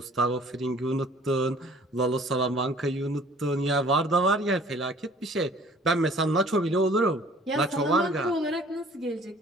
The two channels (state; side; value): normal; both; correlation 0.52